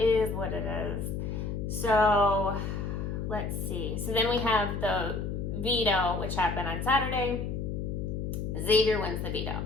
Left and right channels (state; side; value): noise; left; hum, 3 dB below the sound